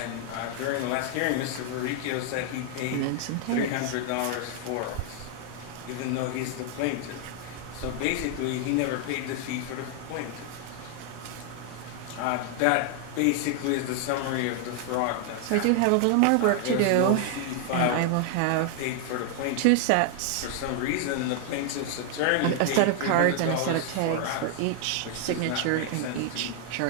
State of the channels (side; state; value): both; different; correlation 0.00